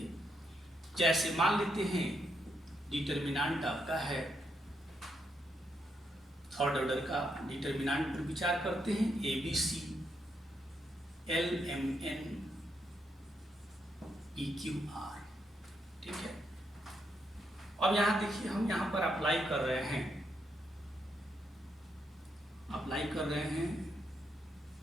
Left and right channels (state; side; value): normal; both; correlation 0.79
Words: जैसे मान लेते हैं डिटर्मिनेंट आपका है, थर्ड ऑर्डर का डिटर्मिनेंट पर विचार करते हैं, ABC LMN EQR। ठीक है, अब यहाँ देखिए हम यहाँ पर अप्लाई कर रहे हैं,